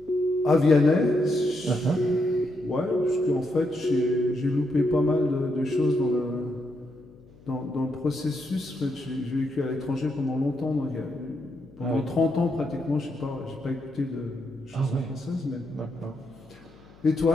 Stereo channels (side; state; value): left; noise; hum, 25 dB below the sound